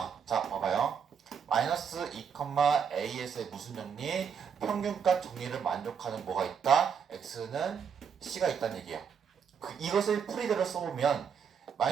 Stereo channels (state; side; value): quieter; left; 6.9 dB